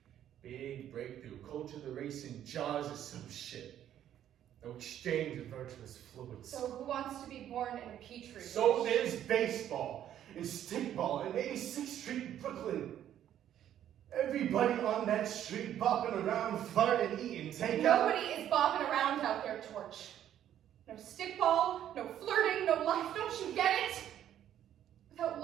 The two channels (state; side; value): quieter; left; 10.9 dB